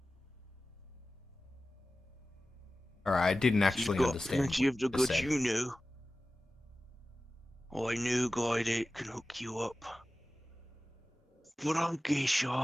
Alright, I didn't actually You've got understand plenty what of the you goods said. you know. I know a guy that can hook you up. But I guess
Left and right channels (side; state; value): both; normal; correlation 0.96